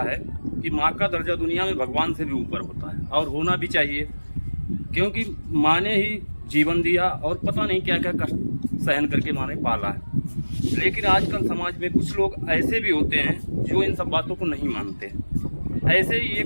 है कि माँ का दर्जा दुनिया में भगवान से भी ऊपर होता है और होना भी चाहिए, क्योंकि माँ ने ही जीवन दिया और पता नहीं क्या क्या कष्ट सहन करके माँ ने पाला है। लेकिन आजकल समाज में कुछ लोग ऐसे भी होते हैं जो इन सब बातों को नहीं मानते। ऐसे ही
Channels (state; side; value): inverted; both; correlation -1.00